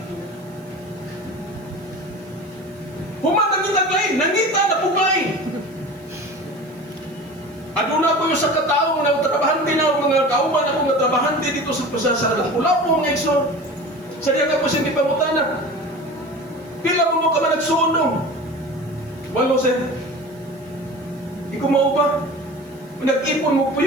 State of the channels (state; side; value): noise; right; hiss, 29 dB below the sound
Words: mga tao na trabahante na mga kauban ako nga trabahante dito sa Lapu-Lapu mga igsoon. Sa diya nga po siya gipangutana. Pila mo ka man nagsunog? Walo sir. Ikaw mao ba? Nag-ipon mo